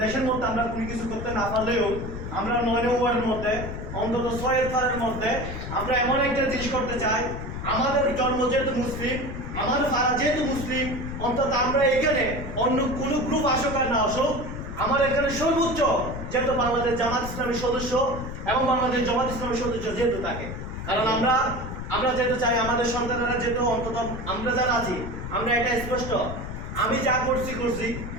দেশের মধ্যে আমরা কোনো কিছু করতে না পারলেও আমরা 9 ওয়ার্ডের মধ্যে অন্তত 6 ফারের মধ্যে আমরা এমন একটা জিনিস করতে চাই। আমাদের জন্ম যেহেতু মুসলিম, আমাদের ফারা যেহেতু মুসলিম, অন্তত আমরা এখানে অন্য কোনো গ্রুপ আসুক আর না আসুক, আমার এখানে সর্বোচ্চ যেহেতু বাংলাদেশ জামাত ইসলামের সদস্য এবং বাংলাদেশ জামাত ইসলামের সদস্য যেহেতু থাকে, কারণ আমরা যেহেতু চাই আমাদের সন্তানেরা যেহেতু অন্তত আমরা যারা আছি আমরা এটা স্পষ্ট, আমি যা করছি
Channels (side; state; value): left; noise; rumble, 7 dB below the sound